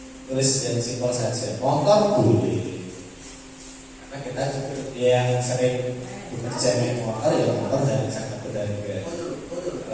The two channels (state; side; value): identical; both; correlation 1.00